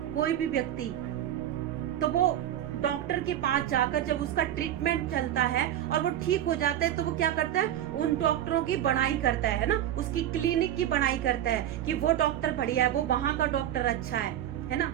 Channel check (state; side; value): quieter; left; 11.6 dB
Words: कोई भी व्यक्ति, तो वो डॉक्टर के पास जाकर जब उसका ट्रीटमेंट चलता है और वो ठीक हो जाता है, तो वो क्या करता है, उन डॉक्टरों की बड़ाई करता है ना, उसकी क्लिनिक की बड़ाई करता है कि वो डॉक्टर बढ़िया है, वो वहां का डॉक्टर अच्छा है ना।